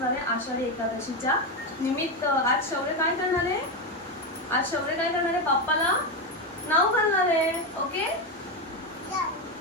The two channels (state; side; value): normal; both; correlation 0.11